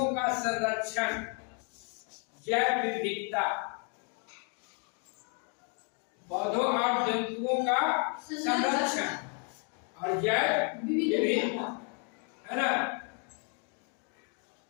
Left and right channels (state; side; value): quieter; right; 39.2 dB